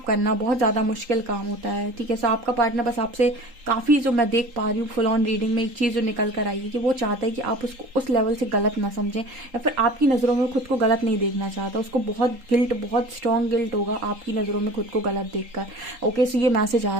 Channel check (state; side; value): late; left; 3.8 ms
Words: करना बहुत ज़्यादा मुश्किल काम होता है। ठीक है, सो आपका पार्टनर बस आपसे काफ़ी, जो मैं देख पा रही हूँ फुल ऑन रीडिंग में, एक चीज़ जो निकल कर आई है कि वो चाहता है कि आप उसको उस लेवल से गलत ना समझें, या फिर आपकी नज़रों में खुद को गलत नहीं देखना चाहता। उसको बहुत गिल्ट, बहुत स्ट्रॉन्ग गिल्ट होगा आपकी नज़रों में खुद को गलत देखकर। ओके, सो ये मैसेज आ